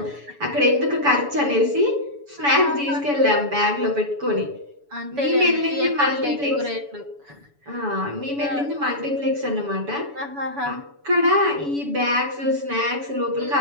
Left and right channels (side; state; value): left; late; 7.0 ms